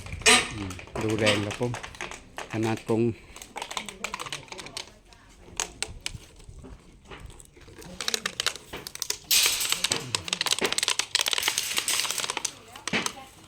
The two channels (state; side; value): identical; both; correlation 1.00